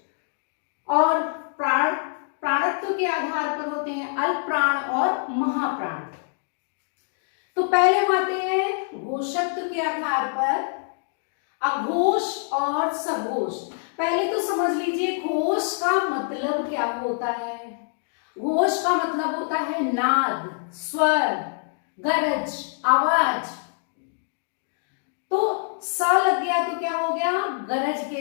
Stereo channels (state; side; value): silent; right; digital silence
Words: और प्राणत्व के आधार पर होते हैं अल्प प्राण और महाप्राण। तो पहले हम आते हैं घोषत्व के आधार पर अघोष और सघोष। पहले तो समझ लीजिए घोष का मतलब क्या होता है। घोष का मतलब होता है नाद, स्वर, गरज, आवाज। तो स लग गया तो क्या हो गया? गरज के